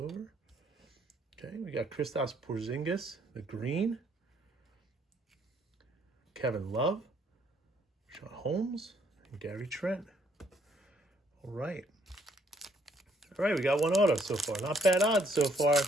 Okay, we got Kristaps Porzingis, the green. Kevin Love, Sean Holmes, and Gary Trent. All right. All right, we got one auto so far. Not bad odds so far.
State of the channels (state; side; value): normal; both; correlation 0.67